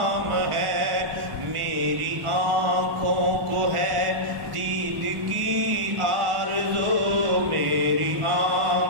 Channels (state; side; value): late; left; 1.4 ms